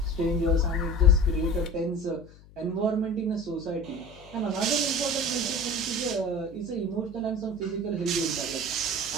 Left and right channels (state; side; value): noise; left; hum, 23 dB below the sound